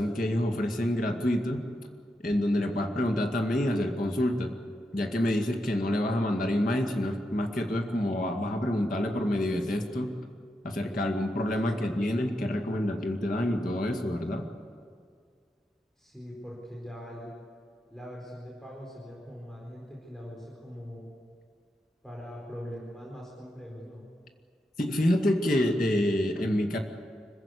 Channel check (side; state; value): both; normal; correlation 0.85